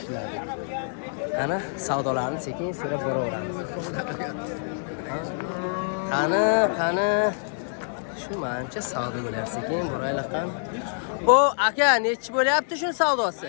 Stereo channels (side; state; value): right; silent; digital silence